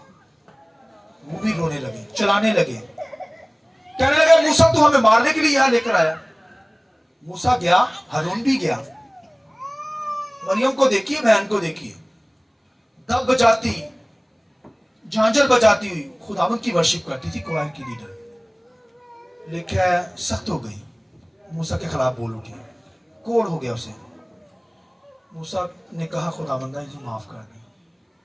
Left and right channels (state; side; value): identical; both; correlation 1.00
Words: वो भी रोने लगे, चलाने लगे, कहने लगे मूसा तू हमें मारने के लिए यहां लेकर आया। मूसा गया, हारून भी गया, मरियम को देखिए, बहन को देखिए, दब बजाती, झांझर बजाती हुई खुदावंद की वर्शिप करती थी, क्वायर की लीडर। लेकिन सख्त हो गई, मूसा के खिलाफ बोल उठी, कोड़ हो गया उसे। मूसा ने कहा खुदावंदा इसे माफ कर दिया।